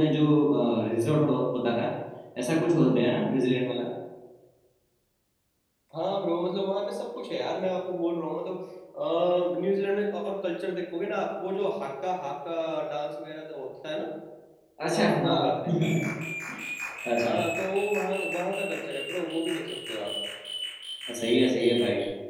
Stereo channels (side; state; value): both; identical; correlation 1.00